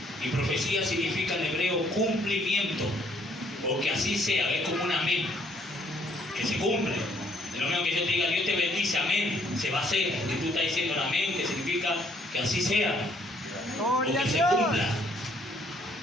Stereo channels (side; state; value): both; normal; correlation 0.65